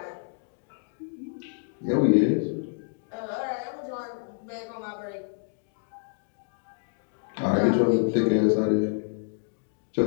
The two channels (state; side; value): silent; right; digital silence